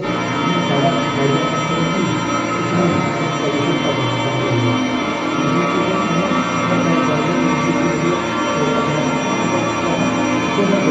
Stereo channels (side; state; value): both; identical; correlation 1.00